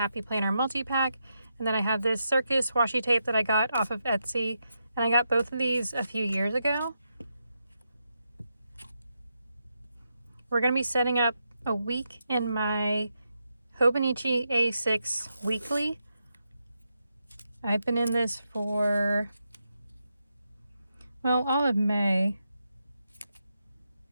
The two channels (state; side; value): inverted; both; correlation -0.84